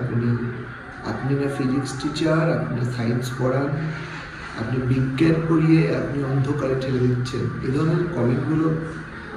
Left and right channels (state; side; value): identical; both; correlation 1.00